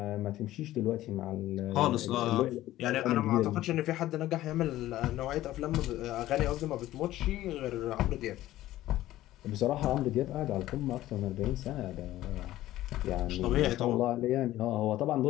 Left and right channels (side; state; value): right; quieter; 15.0 dB